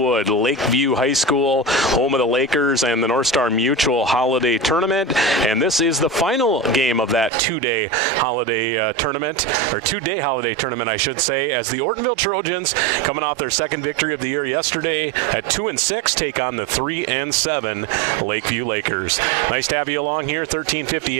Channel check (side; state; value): left; drops out; at 7.3 s